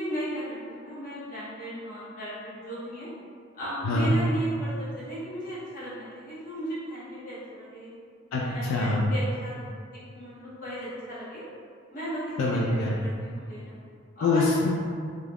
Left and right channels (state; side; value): normal; both; correlation 0.59